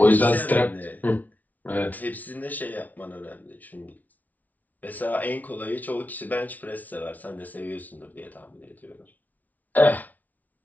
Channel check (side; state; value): right; late; 0.075 ms